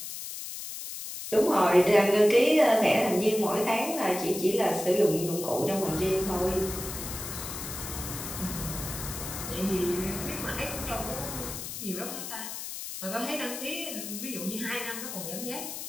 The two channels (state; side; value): noise; left; hiss, 8 dB below the sound